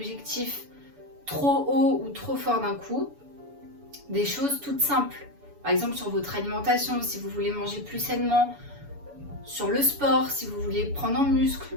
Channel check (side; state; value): left; late; 7.0 ms